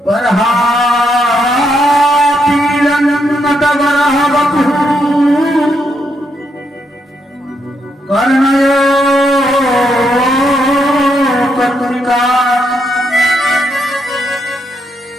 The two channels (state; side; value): normal; both; correlation 0.78